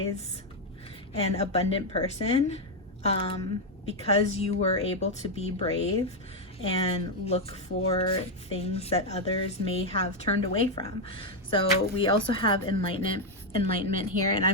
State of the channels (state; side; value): normal; both; correlation 0.03